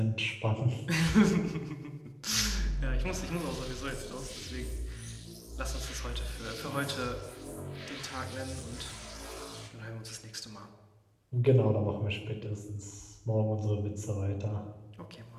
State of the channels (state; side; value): identical; both; correlation 1.00